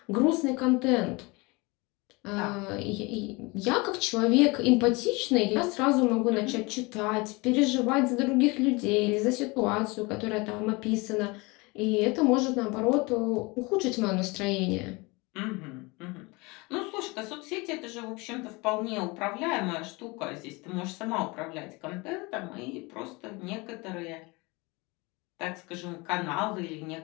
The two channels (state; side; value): quieter; right; 25.7 dB